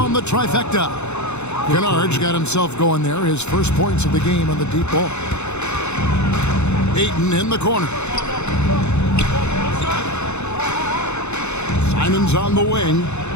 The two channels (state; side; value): late; right; 0.82 ms